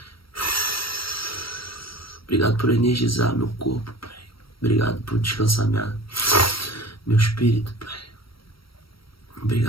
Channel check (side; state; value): right; late; 0.75 ms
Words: Obrigado por energizar meu corpo, Pai. Obrigado por descansar meu espírito, Pai.